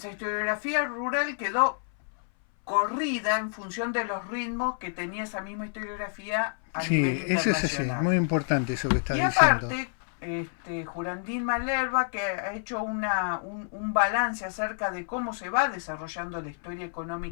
historiografía rural quedó corrida en función de los ritmos que tenía esa misma historiografía a nivel internacional. Es muy importante eso que estás diciendo. Y aparte, Jurandín Malerba, que ha hecho un balance acerca de cómo se va desarrollando la historia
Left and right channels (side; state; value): right; silent; 59 dB below the other